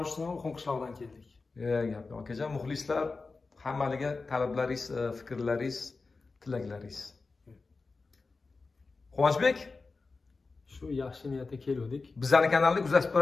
qishloqdan keldik. Gap yo'q akajon, muxlislar hammaliga talablaringiz, fikrlaringiz, tilaklaringiz. Quvonchbek, shu yaxshi niyatda keldik. Bizning kanalni kuzatib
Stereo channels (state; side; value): quieter; right; 4.0 dB